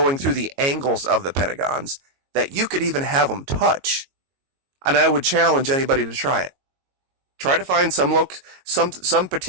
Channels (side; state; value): left; late; 22 ms